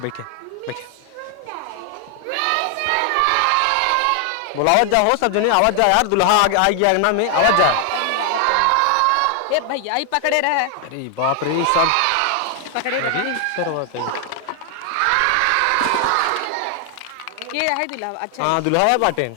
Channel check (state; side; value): different; both; correlation 0.00